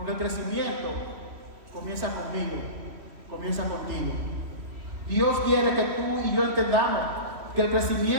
el crecimiento comienza conmigo, comienza contigo. Dios quiere que tú y yo entendamos que el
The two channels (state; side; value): late; left; 3.1 ms